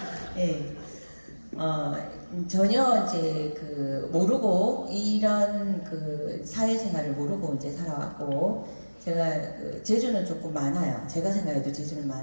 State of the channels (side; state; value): both; inverted; correlation -1.00